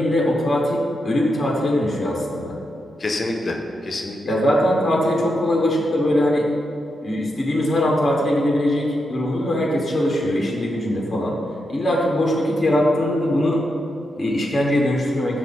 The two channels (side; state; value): both; normal; correlation 0.85